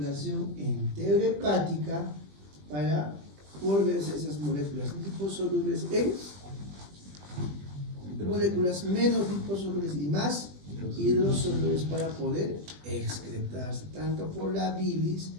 enterohepática para volverse esas moléculas liposolubles en moléculas menos liposolubles y más hidrosolubles para poder excretarse tanto por la bilis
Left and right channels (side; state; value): left; late; 20 ms